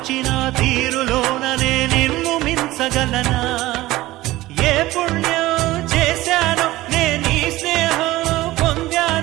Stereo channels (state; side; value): quieter; left; 17.6 dB